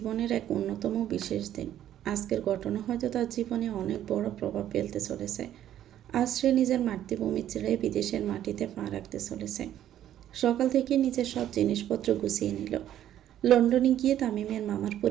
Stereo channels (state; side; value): quieter; left; 11.5 dB